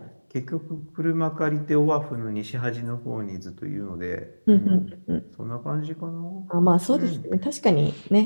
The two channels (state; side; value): inverted; both; correlation -1.00